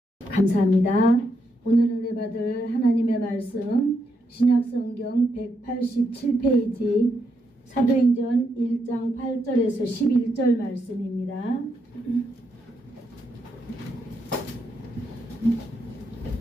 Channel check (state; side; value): normal; both; correlation 0.80